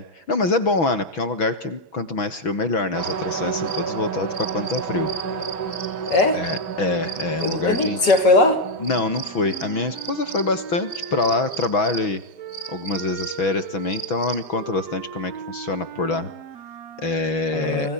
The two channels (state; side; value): late; right; 6.1 ms